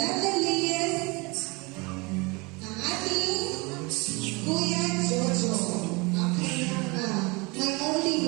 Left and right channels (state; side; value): quieter; left; 26.8 dB